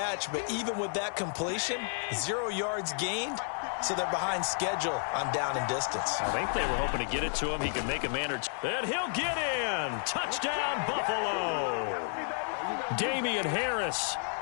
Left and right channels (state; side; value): silent; right; 55 dB below the other